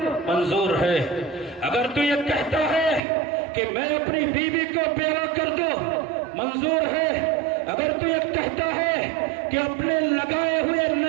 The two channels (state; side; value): drops out; left; at 3.0 s